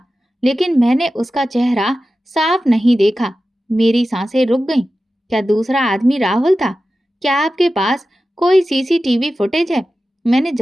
लेकिन मैंने उसका चेहरा साफ नहीं देखा। मेरी सांसें रुक गईं। क्या दूसरा आदमी राहुल था? क्या आपके पास कोई सीसीटीवी फुटेज है? मैंने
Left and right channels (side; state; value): both; normal; correlation 0.94